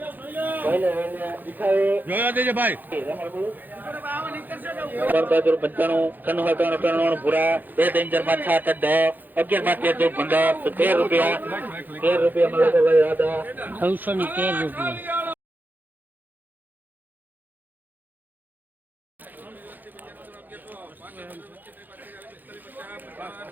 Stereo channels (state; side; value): late; left; 0.086 ms